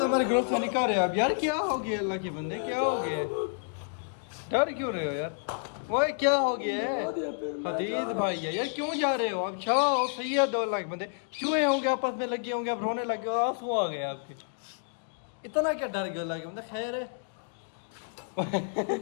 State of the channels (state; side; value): silent; right; digital silence